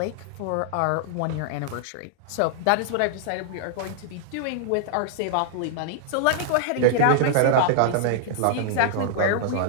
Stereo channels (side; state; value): both; different; correlation -0.01